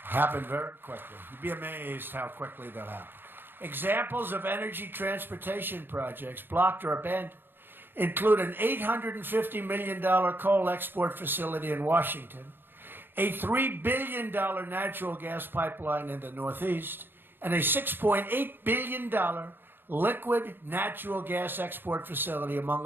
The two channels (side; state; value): left; late; 0.099 ms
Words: Happen very quickly. You'd be amazed how quickly they'll happen. Examples of energy transportation projects blocked or abandoned include an $850 million coal export facility in Washington, a $3 billion natural gas pipeline in the Northeast, and a $6.8 billion liquid natural gas export facility, among